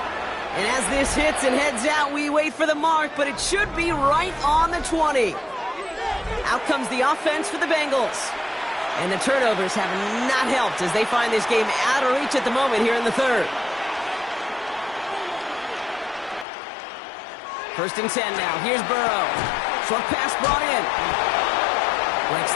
And as this hits and heads out, we wait for the mark, but it should be right on the 20. Out comes the offense for the Bengals. And the turnovers have not helped as they find this game out of reach at the moment here in the 3rd. 1st and 10 now. Here's Burrow. Short pass brought in. Breaks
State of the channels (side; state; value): right; drops out; at 16.4 s